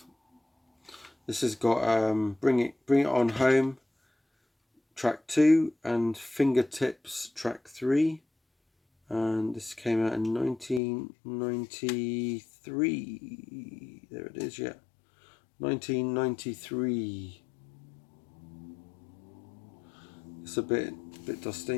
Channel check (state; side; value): drops out; right; at 10.8 s